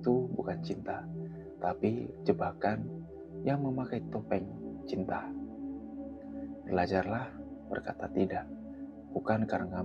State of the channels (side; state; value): both; identical; correlation 1.00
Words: bukan cinta, tapi jebakan yang memakai topeng cinta. Belajarlah berkata tidak, bukan karena